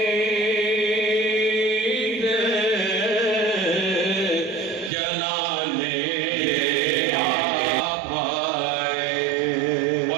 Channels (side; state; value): left; drops out; at 4.9 s